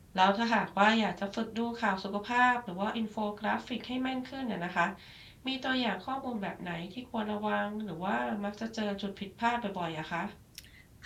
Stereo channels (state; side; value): identical; both; correlation 1.00